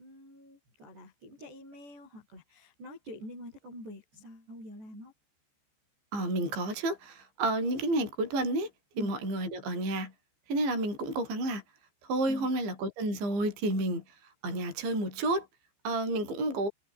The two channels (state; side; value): late; left; 15 ms